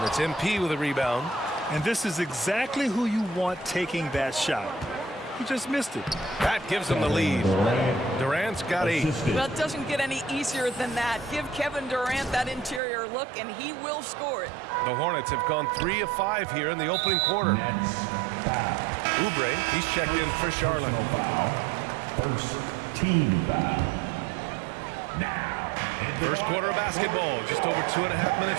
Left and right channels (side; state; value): left; drops out; at 12.8 s